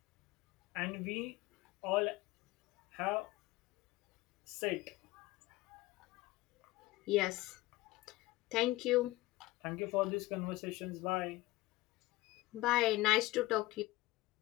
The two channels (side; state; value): right; quieter; 19.2 dB